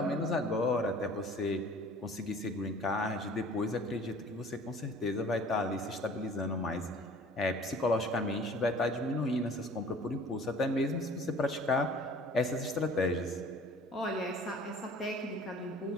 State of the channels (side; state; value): both; normal; correlation 0.49